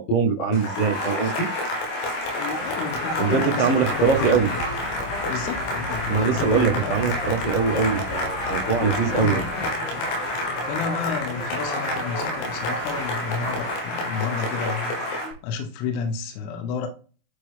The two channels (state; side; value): late; right; 25 ms